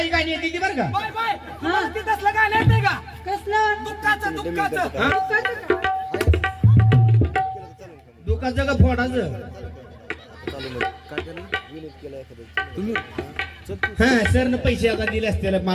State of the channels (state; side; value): identical; both; correlation 1.00